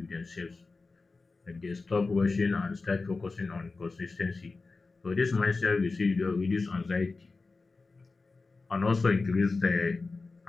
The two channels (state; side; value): quieter; right; 3.9 dB